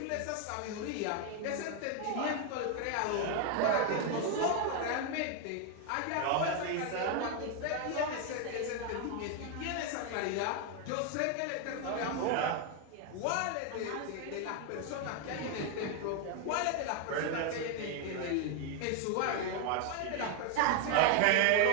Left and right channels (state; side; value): different; both; correlation 0.01